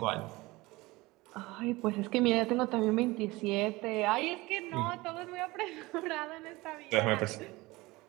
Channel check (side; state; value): left; quieter; 21.3 dB